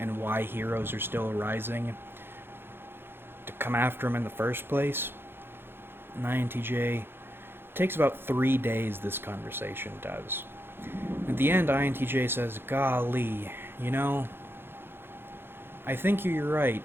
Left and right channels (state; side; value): late; left; 0.10 ms